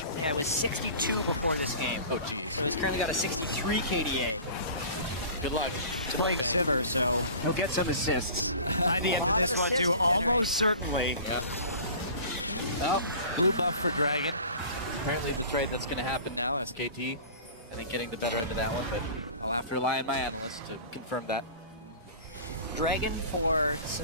Yeah, it was 62 before this game. Oh, jeez. So he's currently got a 63 KDA. Good luck. He's playing Sivir, so he'll get some assists by the end of this one, too. Almost certainly. Yeah. Well, blue buff for Dragon. Apparently the trade that's going to happen now, SKT. I think getting the better end of that one, but I'll have to rely on my analyst to confirm that. Dragon for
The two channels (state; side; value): inverted; both; correlation -0.41